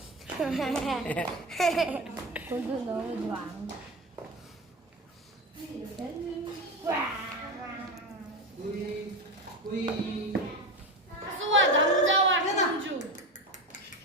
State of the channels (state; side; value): normal; both; correlation 0.22